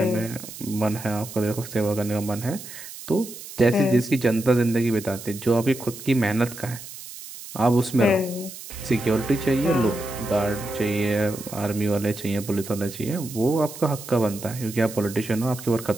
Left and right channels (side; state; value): right; noise; hiss, 13 dB below the sound